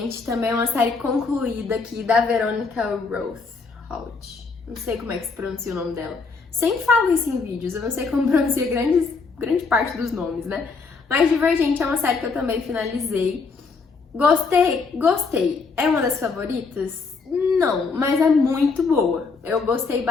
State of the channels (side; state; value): right; quieter; 4.5 dB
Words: também é uma série concluída aqui da Veronica Roth. Não sei como é que se pronuncia o nome dela. Sempre falo isso em vídeos, eu não sei como pronuncia grande parte dos nomes, né? Mas Divergente é uma série que eu também finalizei. Gostei. É uma das favoritas? Não, mas é muito boa. Eu gostei